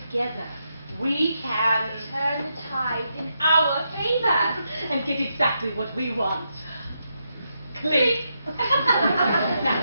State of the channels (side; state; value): both; inverted; correlation -0.82